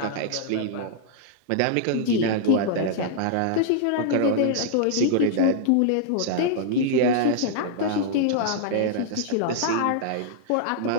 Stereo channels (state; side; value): different; both; correlation -0.01